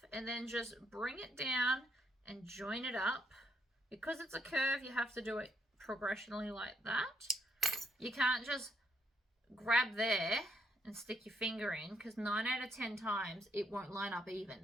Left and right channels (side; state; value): both; normal; correlation 0.73